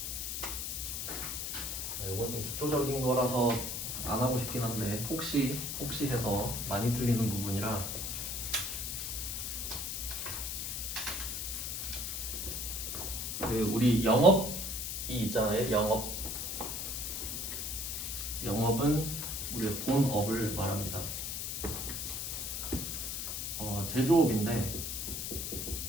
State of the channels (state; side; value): noise; left; hiss, 3 dB below the sound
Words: 이건 좀 기초적인 거라서 안 하고 싶긴 한데 혹시 해서 많이 틀리는 부분이라 우리 영업이 있잖아요. 영업은 우리의 본업을 말합니다. 제조업인데